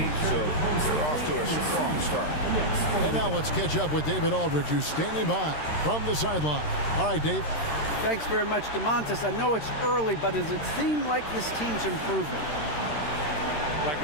so they're off to a strong start. And now let's catch up with David Aldridge, who's standing by from the sideline. All right, Dave. Thanks very much, DeMontis. I know it's early, but does it seem like this team's improving? Like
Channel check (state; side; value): late; right; 13 ms